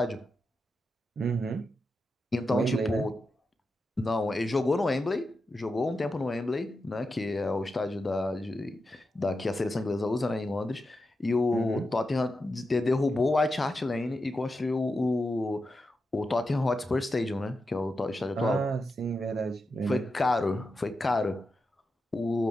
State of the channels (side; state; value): both; normal; correlation 0.88